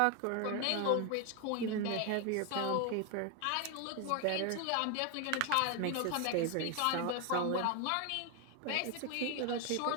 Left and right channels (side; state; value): both; different; correlation 0.01